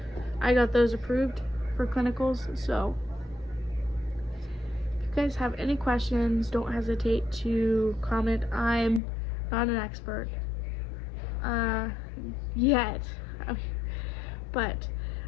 I got those approved for clinicals. So if you guys have any questions, don't hesitate to comment. I'm not an expert yet, but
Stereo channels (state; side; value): drops out; right; at 9.0 s